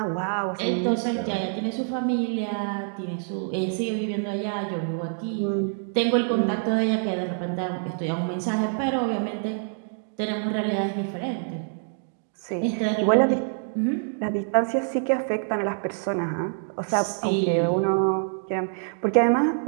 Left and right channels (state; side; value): silent; left; digital silence